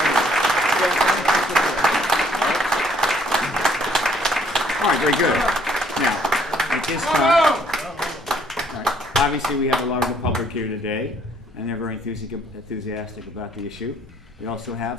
All right, very good. Now, at this time, all right, obviously we have a larger public here today, and they're very enthusiastic about the issue. We also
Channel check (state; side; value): normal; both; correlation 0.64